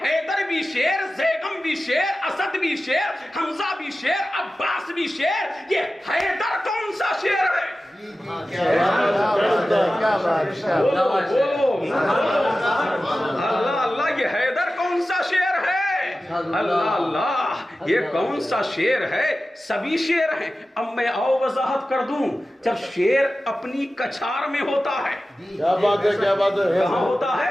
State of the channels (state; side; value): normal; both; correlation 0.95